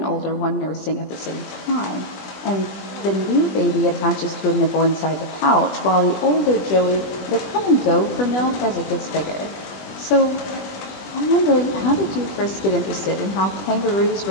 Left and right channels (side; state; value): right; late; 20 ms